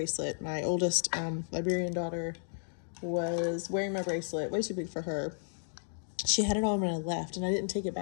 My oldest Liberian daughter was wearing my bracelet, way too big for her. She had it on when I left, and I didn't take it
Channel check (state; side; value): silent; right; digital silence